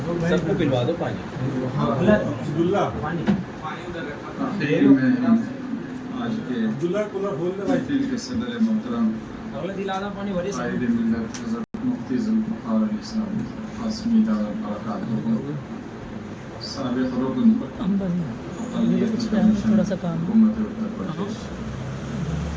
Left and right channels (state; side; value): identical; both; correlation 1.00